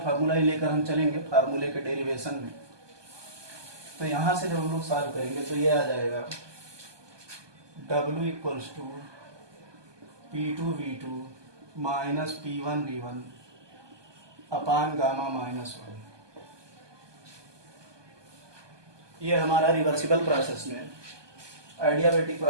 ही लेकर हम चलेंगे फार्मूले के डेरिवेशन में। तो यहां से जब हम लोग सॉल्व करेंगे तो ये आ जाएगा W equals to P2 V2 minus P1 V1 upon gamma minus 1। ये हमारा रिवर्सिबल प्रोसेस में आइडियाबैटिक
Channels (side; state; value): left; late; 1.2 ms